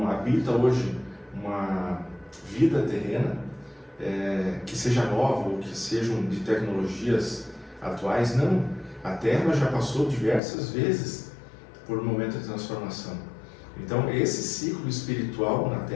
habita hoje uma vida terrena que seja nova ou que sejam de tecnologias atuais, não. A Terra já passou diversas vezes por um momento de transformação. Então esse ciclo espiritual na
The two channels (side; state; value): right; drops out; at 10.4 s